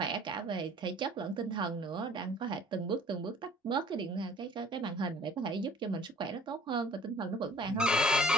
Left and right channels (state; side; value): normal; both; correlation 0.52